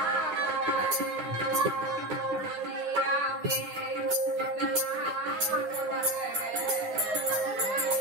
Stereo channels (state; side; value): late; left; 9.5 ms